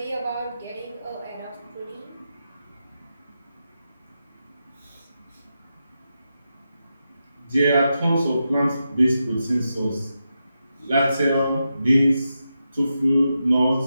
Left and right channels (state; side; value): inverted; both; correlation -0.88